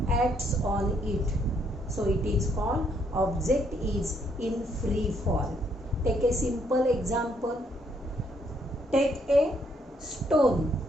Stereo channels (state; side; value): normal; both; correlation 0.71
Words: acts on it, so it is called object is in free fall. Take a simple example. Take a stone,